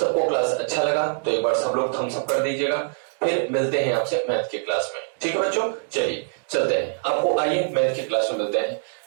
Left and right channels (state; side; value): silent; left; digital silence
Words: क्लास अच्छा लगा तो एक बार सब लोग थम्स अप कर दीजिएगा, फिर मिलते हैं आपसे मैथ की क्लास में, ठीक है बच्चों। चलिए चलते हैं, आपको आइए मैथ की क्लास में मिलते हैं।